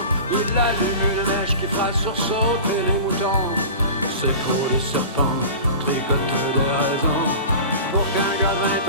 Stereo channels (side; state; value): both; inverted; correlation -0.35